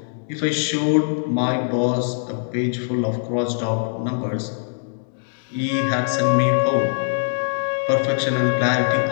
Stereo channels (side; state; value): right; silent; digital silence